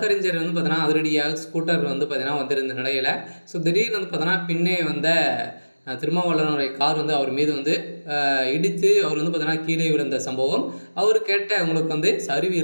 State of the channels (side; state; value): both; inverted; correlation -1.00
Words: பார்த்தீங்கன்னா அதிரடியாக ஸ்கூட்டர் பார்த்தீங்கன்னா வந்திருந்த நிலையில் திடீர்னு பார்த்தீங்கன்னா பின்னே வந்த திருமாவளவனுடைய கார் அவர் மீது இடித்து அவர் பார்த்தீங்கன்னா கீழே விழுந்த சம்பவம். அவர் கேட்ட உங்களுக்கு சரிவு